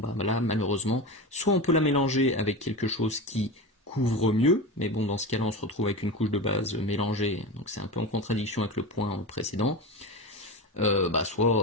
là malheureusement, soit on peut la mélanger avec quelque chose qui couvre mieux, mais bon dans ce cas-là on se retrouve avec une couche de base mélangée, donc c'est un peu en contradiction avec le point précédent.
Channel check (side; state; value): both; normal; correlation 0.24